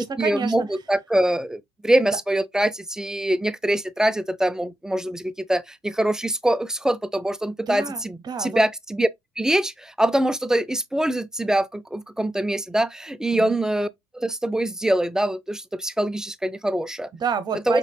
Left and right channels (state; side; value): normal; both; correlation 0.91